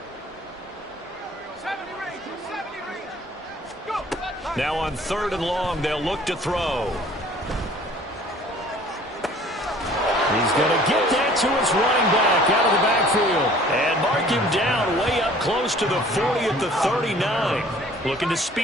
Now on 3rd and long, they'll look to throw. He's going to get that to his running back out of the backfield. And mark him down way up close to the 40 at the 39. Looking to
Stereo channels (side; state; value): both; normal; correlation 0.52